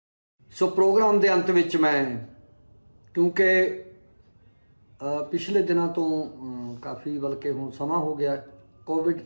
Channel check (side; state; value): both; inverted; correlation -1.00